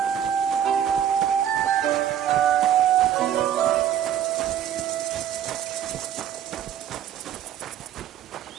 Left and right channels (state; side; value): quieter; left; 10.1 dB